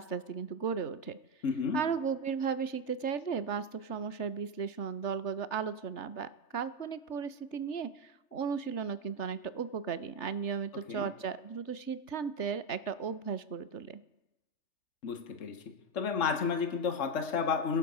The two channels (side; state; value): right; late; 3.3 ms